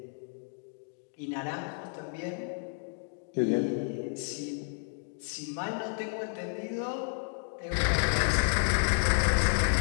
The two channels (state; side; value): silent; right; 57 dB below the other